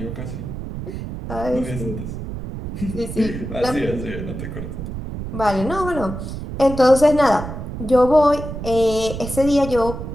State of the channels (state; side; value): noise; right; rumble, 7 dB below the sound